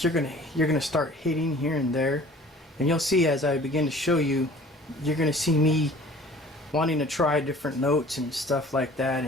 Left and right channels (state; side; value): normal; both; correlation 0.48